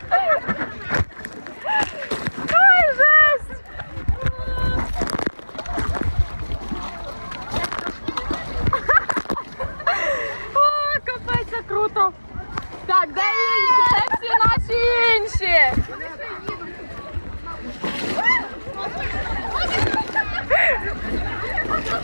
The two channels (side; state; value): both; inverted; correlation -1.00